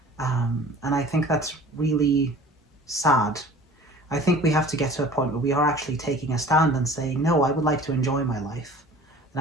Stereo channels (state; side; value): normal; both; correlation 0.44